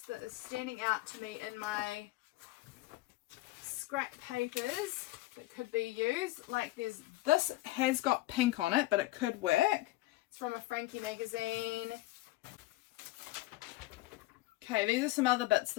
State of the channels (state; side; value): quieter; right; 18.4 dB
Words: that is standing out to me in my scrap papers that could be used. Like, this has got pink on it, but it could work. It's from a Frankie magazine. Okay, these are some other bits